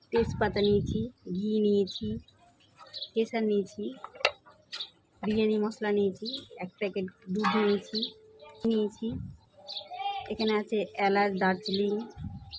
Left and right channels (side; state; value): both; identical; correlation 1.00